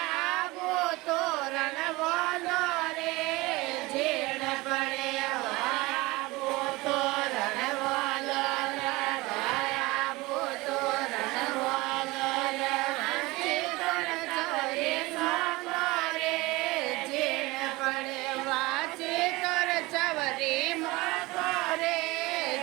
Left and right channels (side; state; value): left; quieter; 21.9 dB